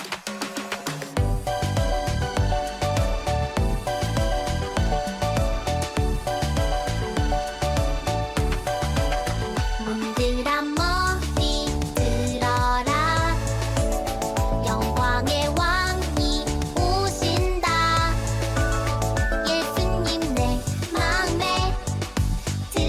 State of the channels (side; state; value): both; identical; correlation 1.00